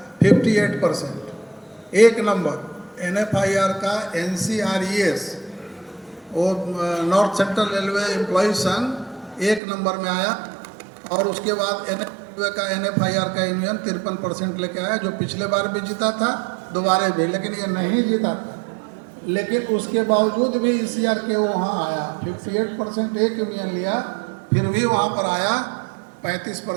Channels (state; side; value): drops out; left; at 9.6 s